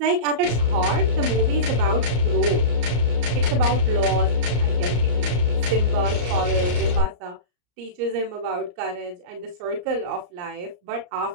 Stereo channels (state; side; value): late; left; 34 ms